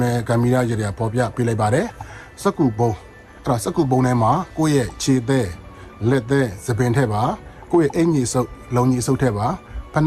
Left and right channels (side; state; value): both; identical; correlation 1.00